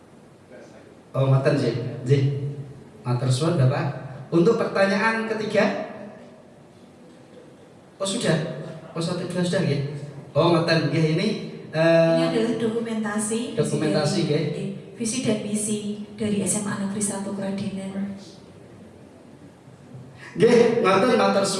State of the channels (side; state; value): both; identical; correlation 1.00